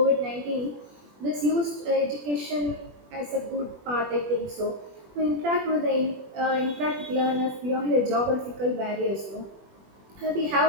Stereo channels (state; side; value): late; left; 20 ms